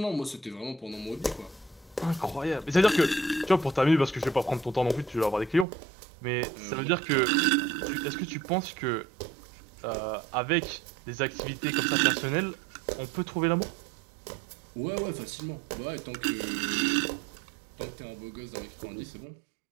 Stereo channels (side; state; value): left; drops out; at 5.7 s